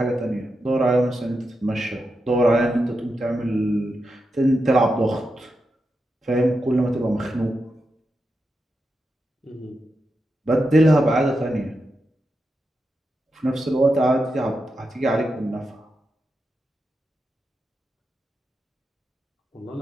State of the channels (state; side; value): normal; both; correlation 0.87